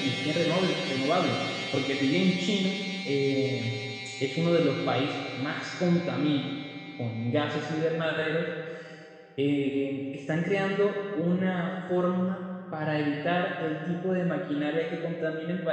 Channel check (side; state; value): both; identical; correlation 1.00